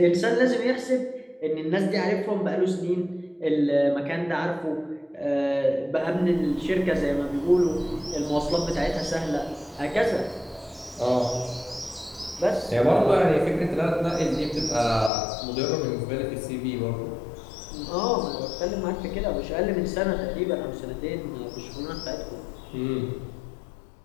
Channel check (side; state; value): right; drops out; at 15.1 s